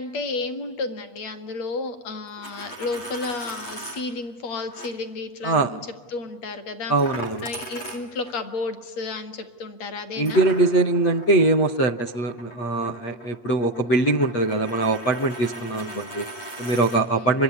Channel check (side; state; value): right; late; 8.4 ms